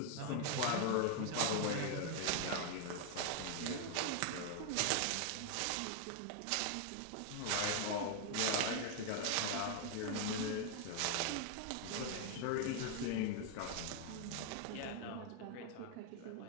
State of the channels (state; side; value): different; both; correlation 0.00